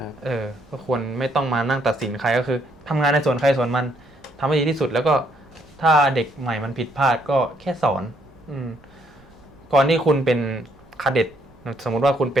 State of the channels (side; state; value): right; noise; rumble, 28 dB below the sound